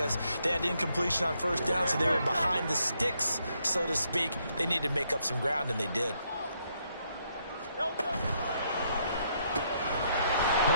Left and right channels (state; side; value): inverted; both; correlation -0.74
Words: they had incompletion on 1st down, so they were behind the sticks, so to speak. They needed to make up some ground, and they did.